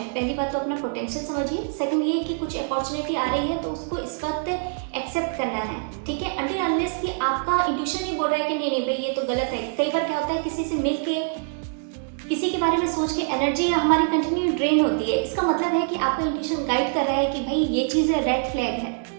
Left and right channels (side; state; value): left; silent; 62 dB below the other